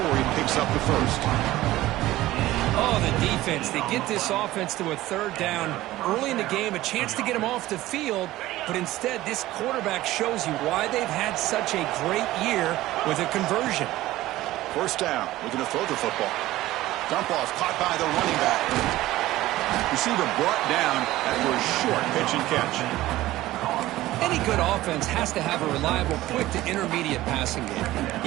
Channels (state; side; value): quieter; left; 16.3 dB